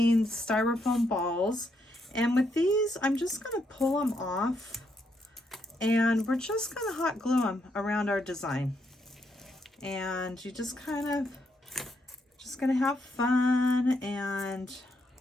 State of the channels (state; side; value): normal; both; correlation 0.77